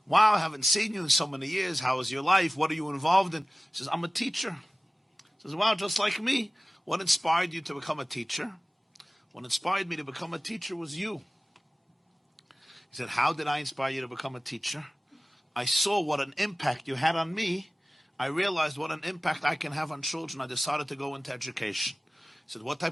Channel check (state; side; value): normal; both; correlation 0.97